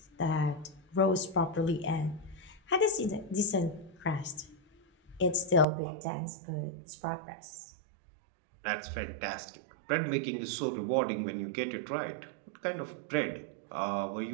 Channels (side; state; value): left; drops out; at 5.7 s